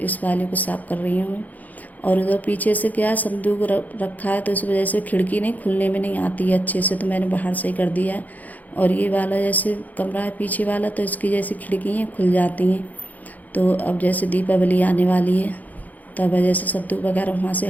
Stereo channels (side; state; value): right; late; 0.080 ms